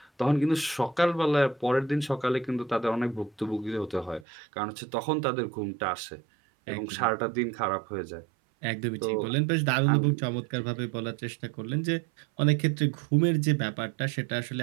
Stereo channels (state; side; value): drops out; left; at 4.2 s